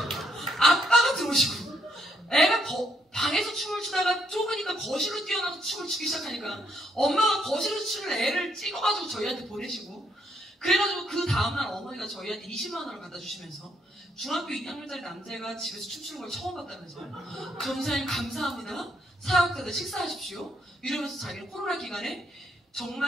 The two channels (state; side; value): normal; both; correlation 0.73